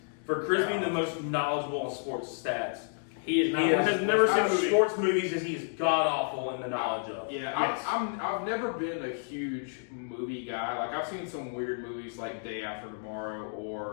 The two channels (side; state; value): right; silent; digital silence